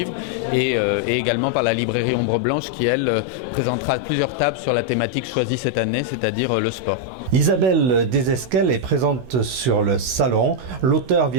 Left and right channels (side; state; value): left; late; 16 ms